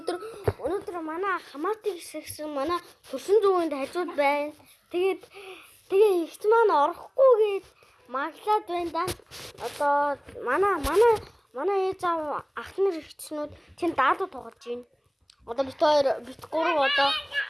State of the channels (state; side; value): identical; both; correlation 1.00